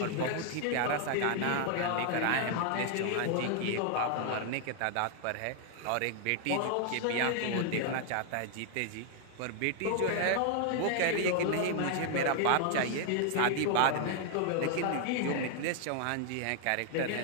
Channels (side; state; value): both; different; correlation 0.00